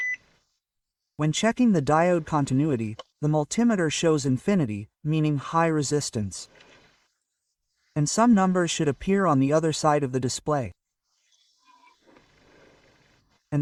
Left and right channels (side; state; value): both; identical; correlation 1.00